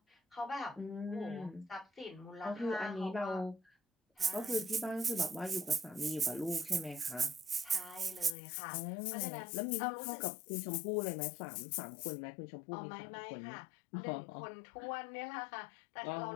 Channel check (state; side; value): drops out; right; at 8.3 s